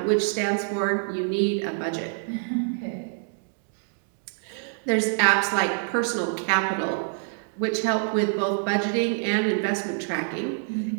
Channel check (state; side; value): silent; left; digital silence